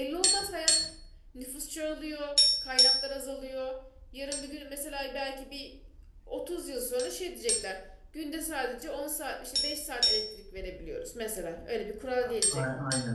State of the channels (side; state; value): both; identical; correlation 1.00